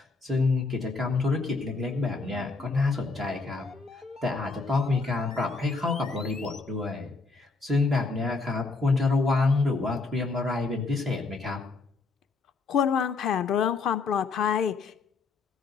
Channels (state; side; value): quieter; right; 4.0 dB